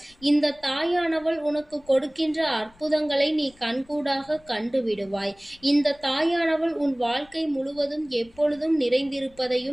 இந்த தாயானவள் உனக்கு கொடுக்கின்ற அற்புதங்களை நீ கண்கூடாக கண்டுவிடுவாய். இந்த தாயானவள் உன் வாழ்க்கை முழுவதும் எப்பொழுதும்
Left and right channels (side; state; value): left; noise; rumble, 28 dB below the sound